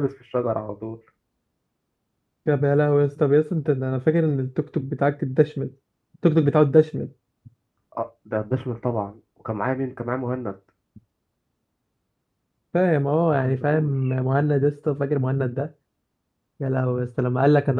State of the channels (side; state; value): both; identical; correlation 1.00